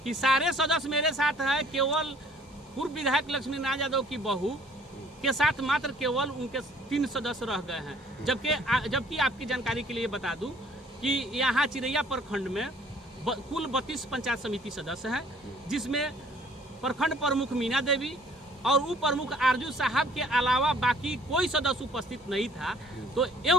कि सारे सदस्य मेरे साथ हैं, केवल पूर्व विधायक लक्ष्मी नारायण यादव की बहू के साथ मात्र केवल उनके 3 सदस्य रह गए हैं। जबकि आपकी जानकारी के लिए बता दूं कि यहाँ चिरैया प्रखंड में कुल 32 पंचायत समिति सदस्य हैं, जिसमें प्रखंड प्रमुख मीना देवी और उप प्रमुख आरजू साहब के अलावा बाकी कोई सदस्य उपस्थित नहीं था। तो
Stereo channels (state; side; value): normal; both; correlation 0.57